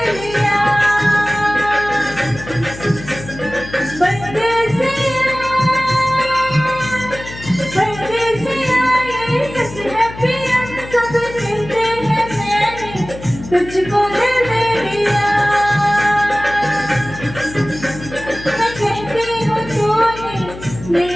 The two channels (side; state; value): left; noise; hum, 14 dB below the sound